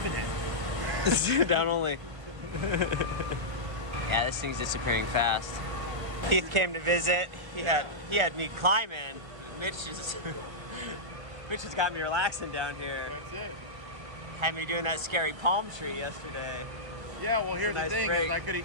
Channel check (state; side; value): late; left; 1.5 ms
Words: it. down only. Yeah, this thing's disappearing fast. Keith came to visit. He had me climbing. Mitch has got me relaxing down here. That's it. Had me doing that scary palm tree yesterday. Yeah, well, here's a nice the thing: break. is I could